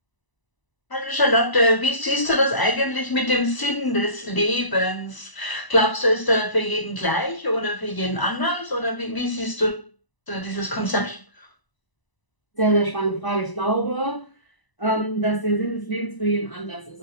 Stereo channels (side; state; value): right; late; 1.0 ms